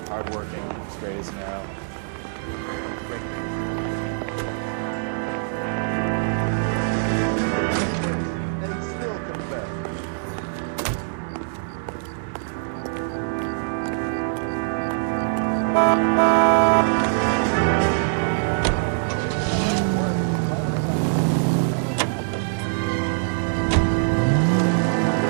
hardworking, straight as an arrow.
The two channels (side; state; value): left; silent; 58 dB below the other